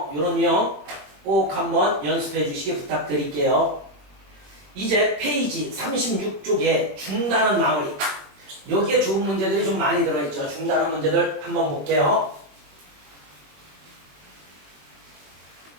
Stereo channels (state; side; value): late; left; 21 ms